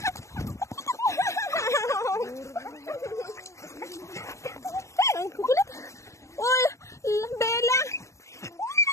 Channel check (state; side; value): late; right; 0.15 ms